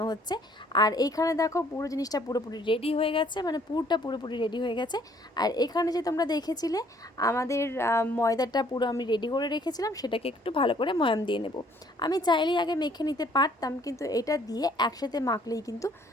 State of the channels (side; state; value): both; normal; correlation 0.61